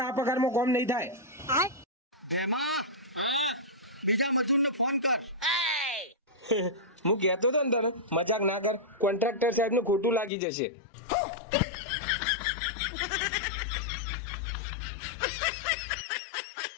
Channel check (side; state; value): right; drops out; at 10.3 s